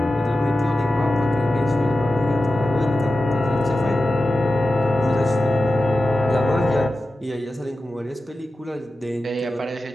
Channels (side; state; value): both; normal; correlation 0.93